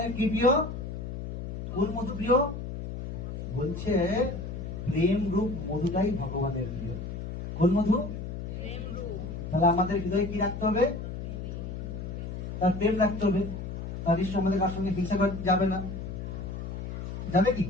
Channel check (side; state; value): left; noise; hum, 6 dB below the sound